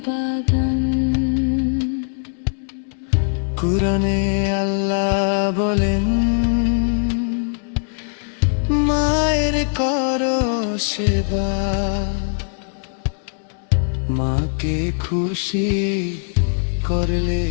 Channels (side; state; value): right; silent; 63 dB below the other